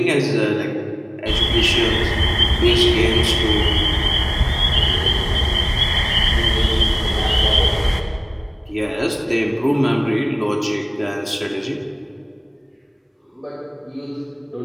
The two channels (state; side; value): identical; both; correlation 1.00